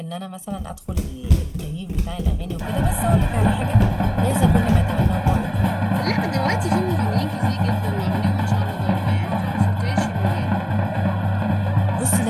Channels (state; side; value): identical; both; correlation 1.00